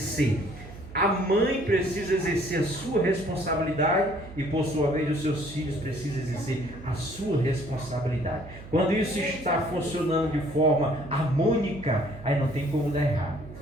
A mãe precisa exercer a sua responsabilidade e, por sua vez, os seus filhos precisam exercer a sua responsabilidade. Quando isso está funcionando de forma harmônica, aí não tem como dar errado.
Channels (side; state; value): right; noise; hum, 16 dB below the sound